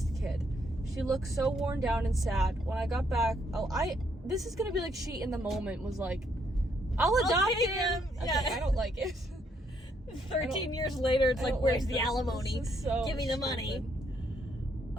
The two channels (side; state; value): both; normal; correlation 0.72